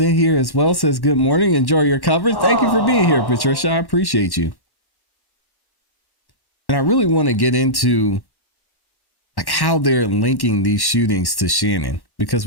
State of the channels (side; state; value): right; late; 1.1 ms